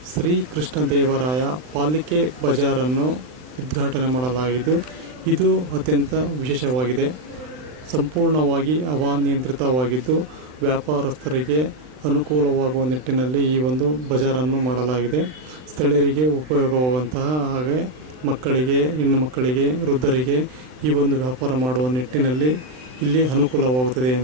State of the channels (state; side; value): late; left; 39 ms